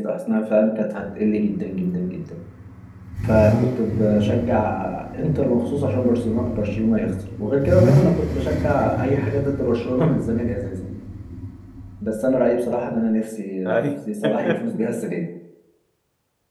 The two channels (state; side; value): identical; both; correlation 1.00